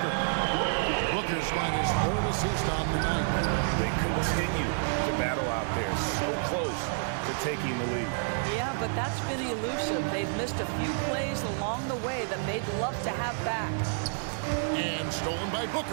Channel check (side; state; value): left; silent; digital silence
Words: Booker's got his 3rd assist on the night. They continue to battle out there, so close to taking the lead. Yeah, but that's been elusive. They've missed a few plays along the way that they'd love to have back. And stolen by